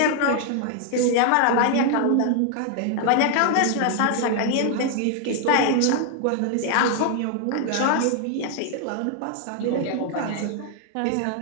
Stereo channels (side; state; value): both; different; correlation 0.00